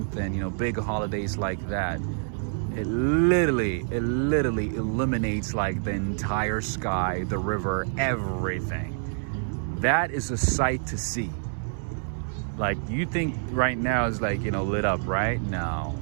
and you know, big holidays like that. It literally illuminates like the entire sky, the river, everything. That is a sight to see. Like, you think right now is like, you know, lit up, right? No.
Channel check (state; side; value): silent; left; 60 dB below the other